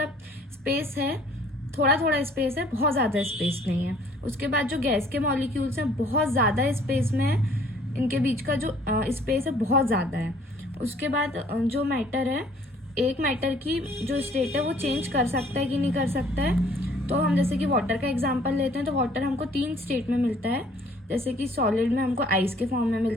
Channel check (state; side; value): normal; both; correlation 0.57